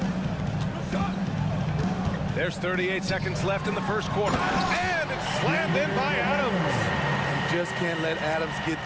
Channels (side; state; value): both; identical; correlation 1.00